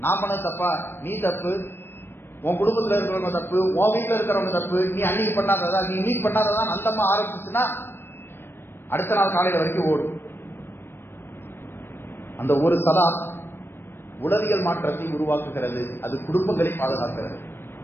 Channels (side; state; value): right; late; 0.11 ms